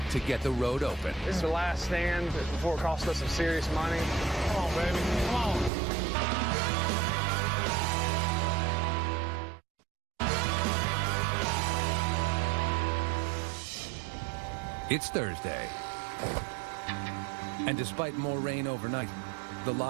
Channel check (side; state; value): left; drops out; at 5.7 s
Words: to get the road open. This is the last stand before it costs us some serious money. Come on, baby. Come on. It's Thursday. And despite more rain overnight, the